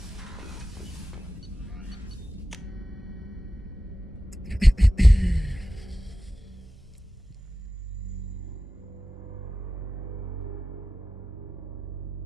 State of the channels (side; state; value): both; normal; correlation 0.94